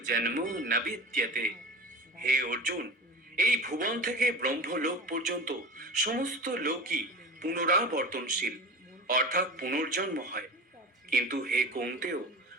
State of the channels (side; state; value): both; normal; correlation 0.33